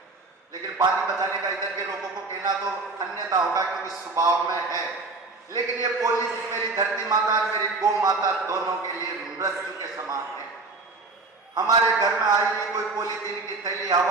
लेकिन पानी बचाने का इधर के लोगों को कहना तो अन्यथा होगा, क्योंकि स्वभाव में है। लेकिन ये पॉलिसी मेरी धरती माता और मेरी गौ माता दोनों के लिए मृत्यु के समान है। हमारे घर में आई हुई कोई पॉलीथीन की थैली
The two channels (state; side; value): quieter; left; 3.6 dB